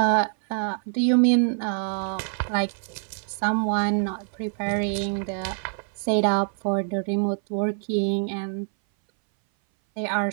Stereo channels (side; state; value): left; silent; 59 dB below the other